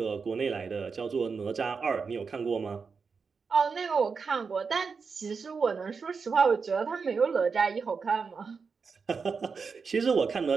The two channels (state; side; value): quieter; left; 5.3 dB